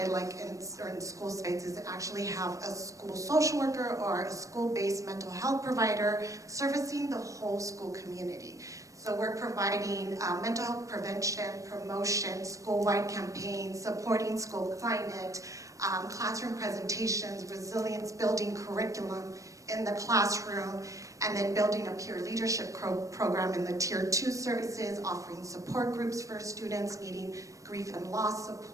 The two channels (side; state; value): left; late; 0.16 ms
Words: in certain school spaces, is actually have a school social worker or a school-based mental health provider servicing the whole school community. So we're providing mental health prevention, promotion, school-wide campaigns, supporting school climate, classroom presentations, resilience building curriculum in the classroom, and then building a peer leadership program in the Tier 2 services, offering support groups for students needing grief and loss